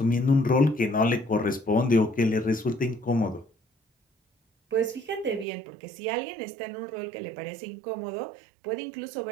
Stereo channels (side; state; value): left; drops out; at 5.5 s